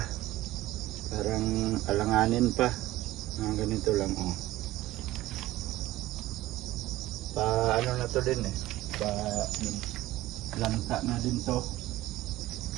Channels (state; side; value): quieter; left; 16.6 dB